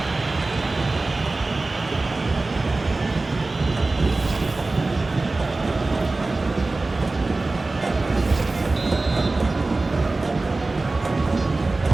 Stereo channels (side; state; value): left; quieter; 3.3 dB